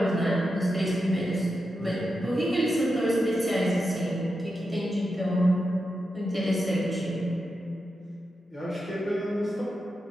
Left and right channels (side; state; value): both; normal; correlation 0.88